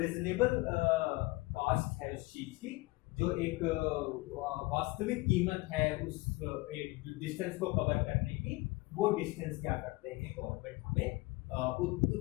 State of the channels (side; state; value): right; quieter; 22.7 dB